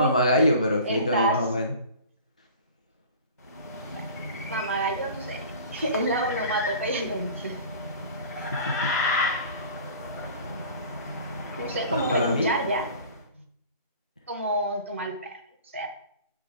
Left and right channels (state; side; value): inverted; both; correlation -0.42